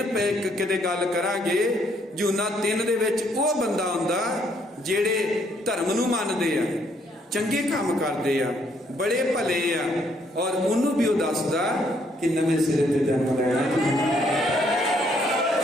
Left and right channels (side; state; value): both; normal; correlation 0.69